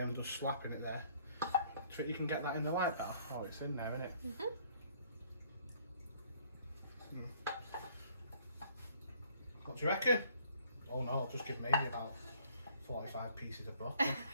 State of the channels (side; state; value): both; inverted; correlation -0.61